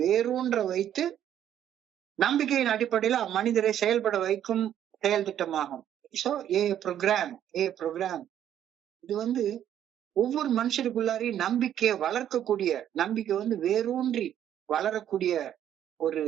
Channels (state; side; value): quieter; left; 10.6 dB